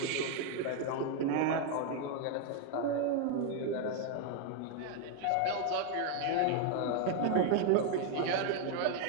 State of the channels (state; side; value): different; both; correlation 0.00